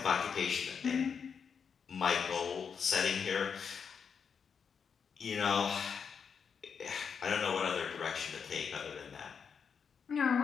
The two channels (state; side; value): quieter; right; 6.5 dB